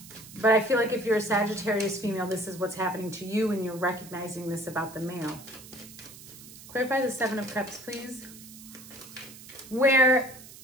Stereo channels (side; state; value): right; noise; hiss, 17 dB below the sound